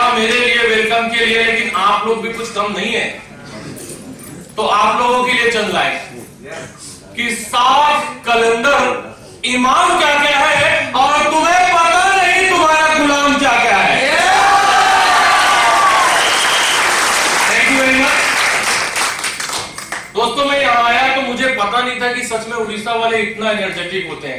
मेरे लिए वेलकम के लिए, लेकिन आप लोग भी कुछ कम नहीं है। तो आप लोगों के लिए चल रहा है कि साफ कैलेंडर इमाम क्या क्या है और तुम्हें पता नहीं तुम्हारा गुलाम क्या क्या है। Thank you very much. दोस्तों मैं यहां आया तो मुझे पता नहीं था कि सच में उड़ीसा वाले इतना एनर्जेटिक होते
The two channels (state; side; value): identical; both; correlation 1.00